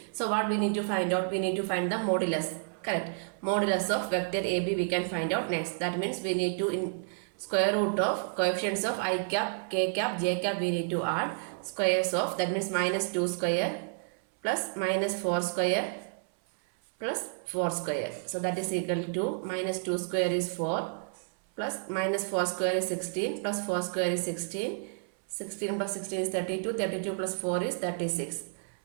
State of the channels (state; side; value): silent; left; 57 dB below the other